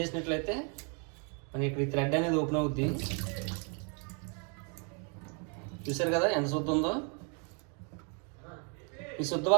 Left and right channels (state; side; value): quieter; left; 37.1 dB